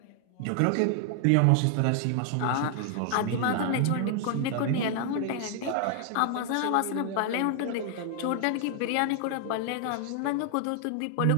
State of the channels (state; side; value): different; both; correlation 0.00